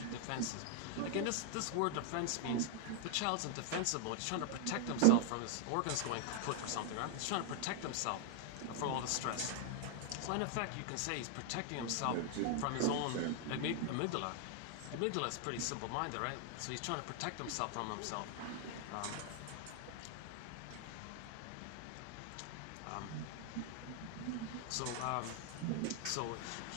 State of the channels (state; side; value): different; both; correlation 0.00